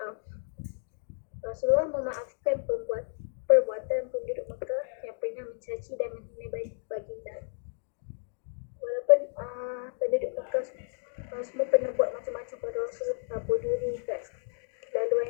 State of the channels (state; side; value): silent; right; digital silence